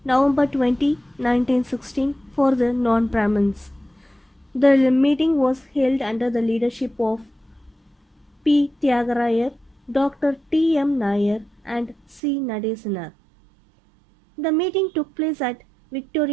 November 20, 1916 for the non-Brahmins. The meeting was held under the leadership of P. Tyagarayar, Dr. T. M. Nair and C. Nadesanar. The meeting took place at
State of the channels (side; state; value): left; drops out; at 12.2 s